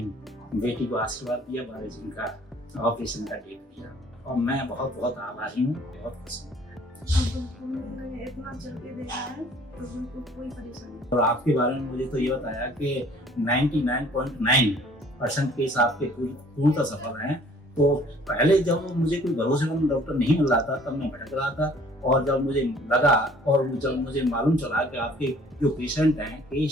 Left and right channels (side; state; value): both; normal; correlation 0.55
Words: बेटी को आशीर्वाद दिया, 12 जून का ऑपरेशन का डेट दिया और मैं बहुत बहुत आभारी हूँ, बहुत खुश हूँ। इतना चल के देखा है तो बिल्कुल कोई परेशानी नहीं। और आपके बारे में मुझे तो ये बताया कि 99.9% केस आपके पूर्णतः सफल हैं। तो पहले जब मुझे कोई भरोसेमंद डॉक्टर नहीं मिल रहा था तब मैं भटक रहा था, और जब मुझे लगा और जब मुझे मालूम चला कि आपके जो पेशेंट हैं,